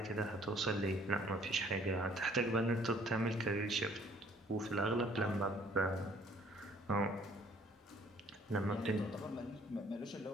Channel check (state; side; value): normal; both; correlation 0.59